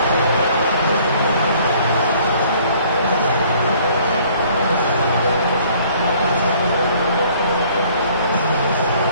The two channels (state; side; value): inverted; both; correlation -0.58